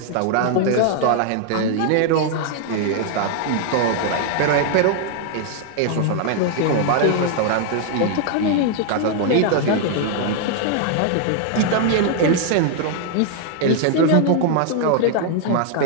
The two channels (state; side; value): different; both; correlation 0.00